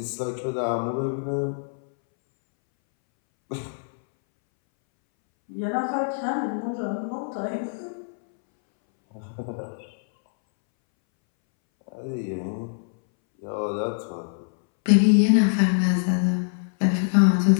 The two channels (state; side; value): silent; right; 62 dB below the other